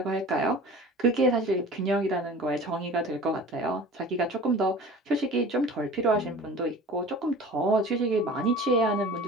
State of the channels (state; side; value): normal; both; correlation 0.40